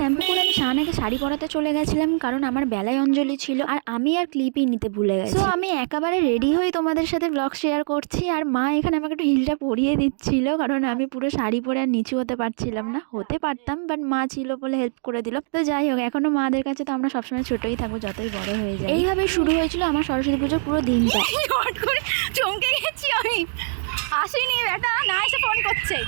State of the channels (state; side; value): silent; left; digital silence